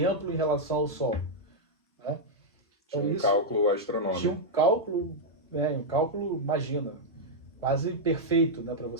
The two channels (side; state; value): both; normal; correlation -0.04